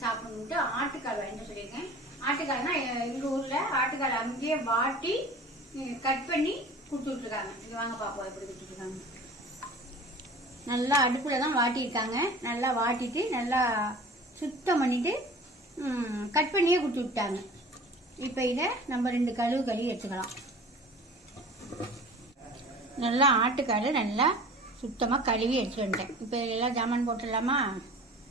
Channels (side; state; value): both; normal; correlation 0.42